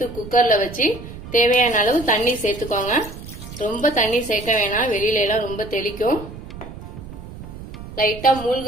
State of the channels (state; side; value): noise; right; rumble, 13 dB below the sound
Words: குக்கர்ல வச்சு தேவையான அளவு தண்ணி சேர்த்துக்கோங்க. ரொம்ப தண்ணி சேர்க்க வேணாம், வெளியில எல்லாம் ரொம்ப தெளிக்கும். லைட்டா